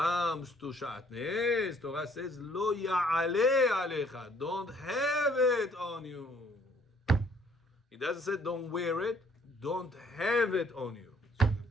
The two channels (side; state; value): both; normal; correlation 0.62